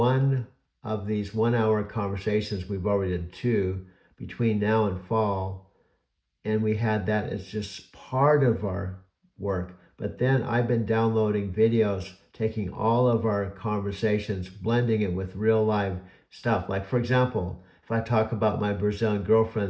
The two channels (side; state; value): both; identical; correlation 1.00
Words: of these 1 hour conversations? We've already done two between now and fall, and we had that as just part of our work. But then I've been downloading videos, taking all of our conversations, blending it with real live stuff. Like, for example, if I talk about my Brazilian